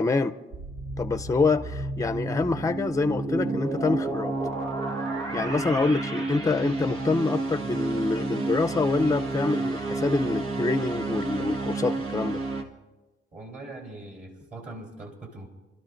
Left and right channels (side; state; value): both; normal; correlation 0.78